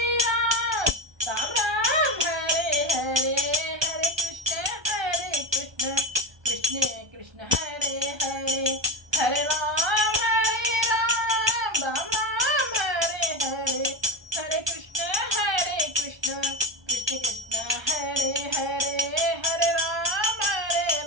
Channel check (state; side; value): late; left; 1.2 ms